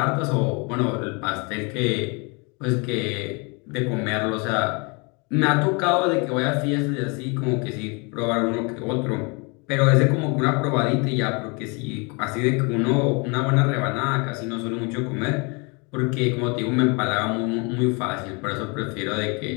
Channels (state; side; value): quieter; right; 31.2 dB